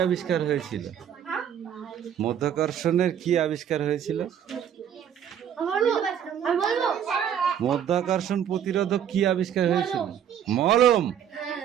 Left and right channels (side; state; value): left; quieter; 9.1 dB